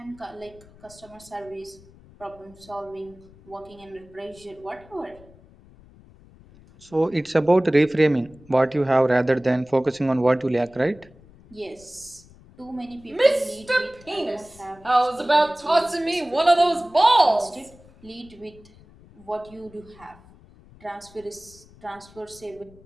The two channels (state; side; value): noise; left; rumble, 24 dB below the sound